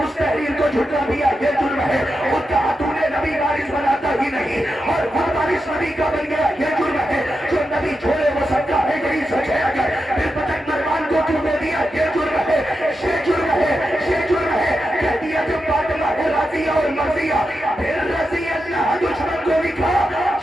تحریر کو جھٹلا دیا یہ جرم ہے. خود کہا تو نے نبی وارث بناتا ہی نہیں اور خود وارث نبی کا بن گیا یہ جرم ہے. جو نبی چھوڑے وہ صدقہ ہے, یہی سچ ہے. اگر پھر پتک مروان کو کیوں دے دیا یہ جرم ہے, یہ جرم ہے, یہ جرم ہے. کہہ دیا جب فاطمہ ہے راضیہ اور مرضیہ پھر رضی اللہ دشمن کو لکھا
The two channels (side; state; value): both; normal; correlation 0.88